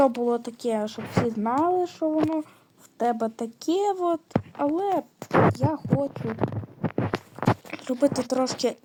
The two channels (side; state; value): both; identical; correlation 1.00